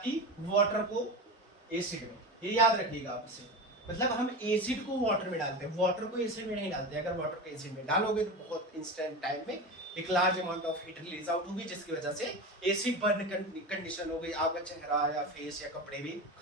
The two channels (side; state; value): both; normal; correlation 0.25